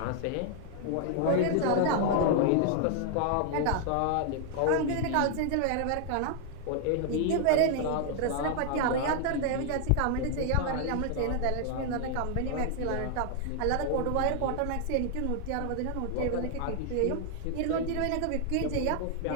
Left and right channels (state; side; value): different; both; correlation 0.00